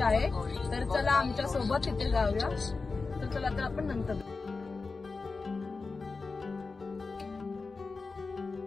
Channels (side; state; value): right; quieter; 4.1 dB